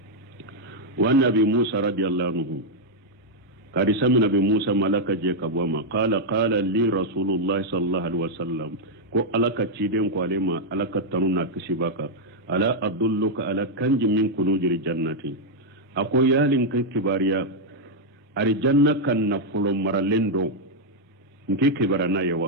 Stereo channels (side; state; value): both; normal; correlation -0.02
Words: wa nabi Musa radiyallahu anhu kadi samina be Musa malaka je kabwama qala li rasulullah sallallahu alaihi wasallam ko alaka ciden ko alema alaka tanuna kishibaka ala adulluka ala kanji min kunujil jannati ako yalin kan kibariya ari janna kan nafulo maralendo nke kibarana